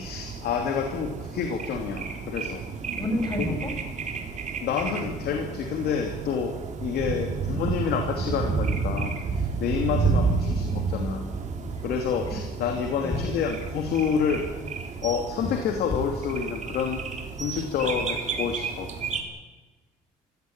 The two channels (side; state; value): both; normal; correlation 0.43